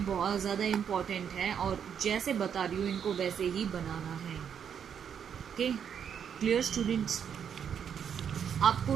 बहुत ज़्यादा इम्पॉर्टेंट है और जैसे बता रही हूँ इनको वैसे ही बनाना है। Okay, clear students. आपको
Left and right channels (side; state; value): left; quieter; 8.0 dB